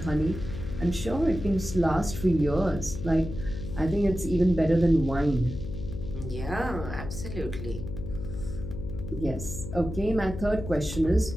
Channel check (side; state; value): left; noise; hum, 7 dB below the sound